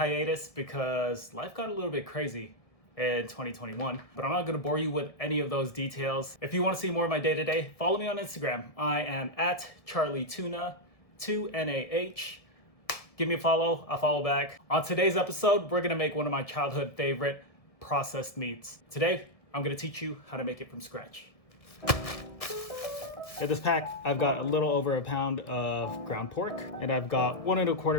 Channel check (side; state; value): right; late; 1.6 ms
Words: because life got a little bit crazy in 2021, but I'm not gonna bore you with any of those details. If you wanna see more of my day-to-day, follow me on Instagram. I am at CharlieTuna, 2NAH. Give me a follow, I'll follow back. On today's episode, we're gonna make one of my childhood favorite processed meats. Today, I'm gonna teach you how to make it from scratch. In this pack, I've got a little over a pound of ground pork, and I've got 1 1/4